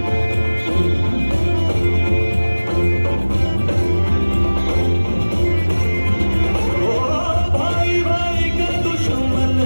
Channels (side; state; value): both; inverted; correlation -1.00